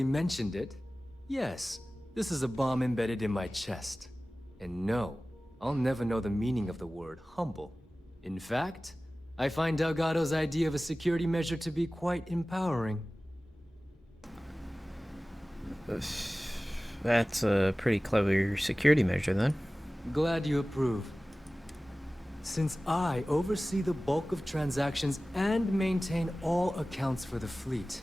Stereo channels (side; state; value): both; normal; correlation 0.97